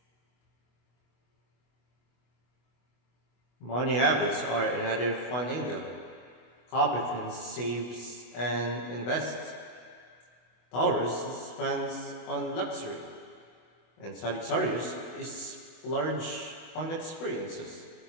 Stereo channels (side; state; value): right; late; 24 ms